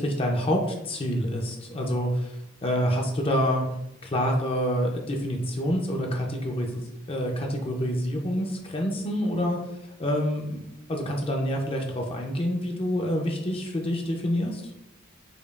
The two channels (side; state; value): both; normal; correlation 0.66